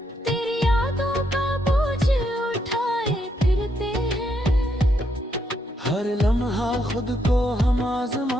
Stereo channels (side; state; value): both; normal; correlation 0.77